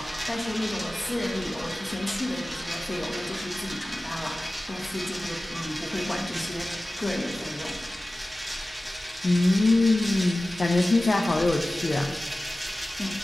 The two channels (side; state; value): both; normal; correlation 0.97